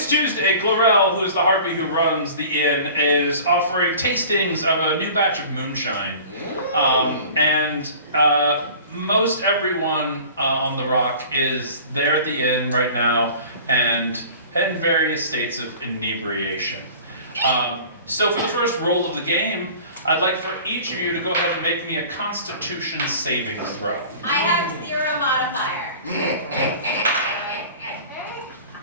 Tuesday. Glorell, who is the harpy who runs the inn, is offering tastings of a new batch of moonshine. And most everyone on the Rock is there at the inn right now and in various states of inebriation. So for the first roll of the game, I'd like for each of you to go ahead and make me a Constitution savings throw. I have 0 modifier.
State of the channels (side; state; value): both; inverted; correlation -0.43